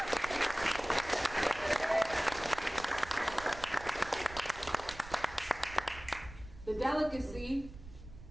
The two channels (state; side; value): noise; right; rumble, 15 dB below the sound